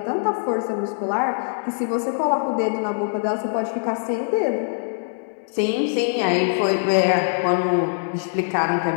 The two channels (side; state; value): right; silent; digital silence